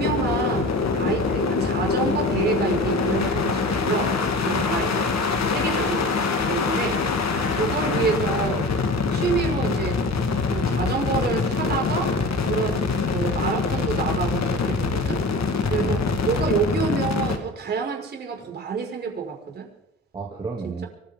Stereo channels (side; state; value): both; normal; correlation 0.35